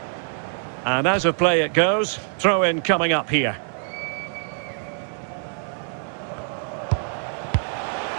And as of play it goes, throw in coming up here.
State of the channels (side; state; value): left; silent; 62 dB below the other